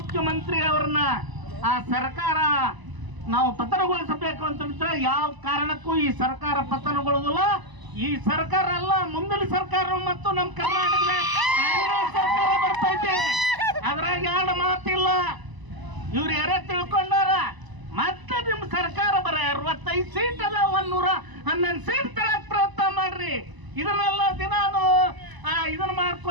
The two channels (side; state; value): left; late; 1.0 ms